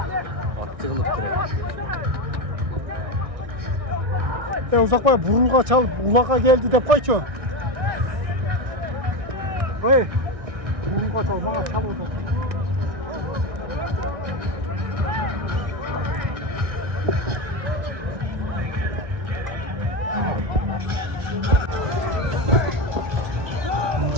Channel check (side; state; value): left; late; 1.6 ms